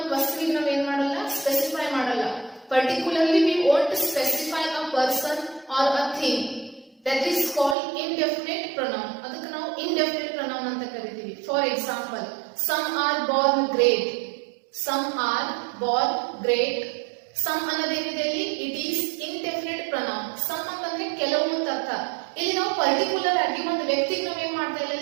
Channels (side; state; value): left; drops out; at 7.8 s